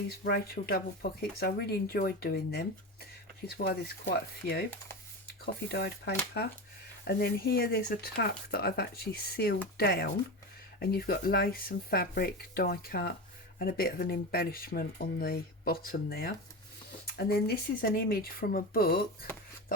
Rachel double pockets. I really enjoyed doing them, which is why there's quite a few. Coffee dyed paper, and then here there's a tuck that I've actually sealed down, and you've got lace and fabric, die cut, and a bit of an embellishment on the bottom there. And then this is an image from a book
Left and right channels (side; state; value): both; normal; correlation 0.23